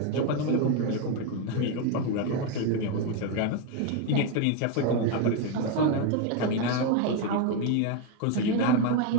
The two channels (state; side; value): different; both; correlation 0.02